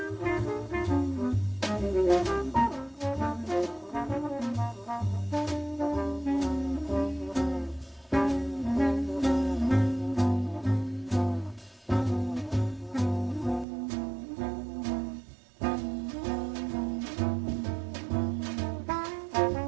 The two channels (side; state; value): left; drops out; at 13.7 s